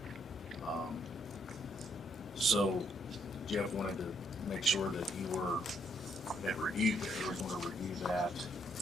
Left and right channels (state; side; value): normal; both; correlation 0.71